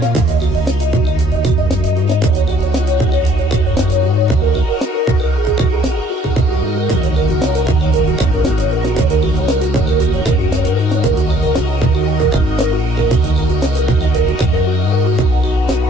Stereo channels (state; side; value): normal; both; correlation 0.60